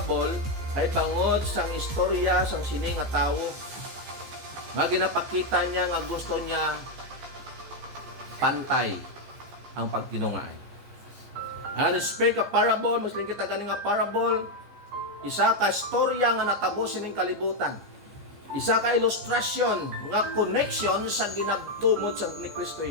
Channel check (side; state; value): left; late; 15 ms